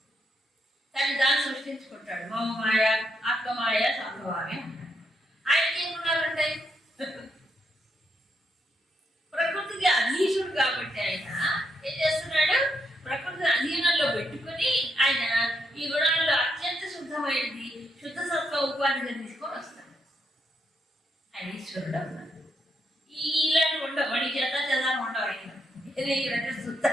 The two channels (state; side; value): normal; both; correlation 0.79